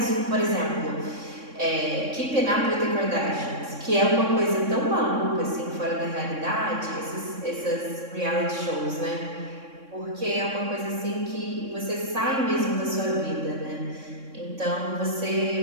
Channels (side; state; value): left; late; 3.6 ms